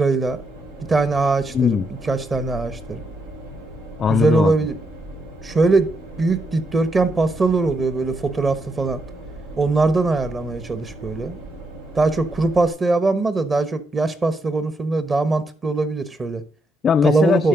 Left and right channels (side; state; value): both; normal; correlation 0.80